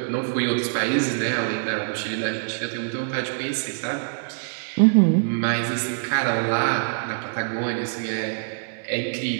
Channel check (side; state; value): left; silent; digital silence